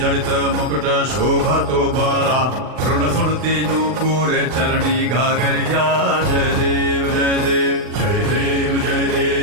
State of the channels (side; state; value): left; late; 40 ms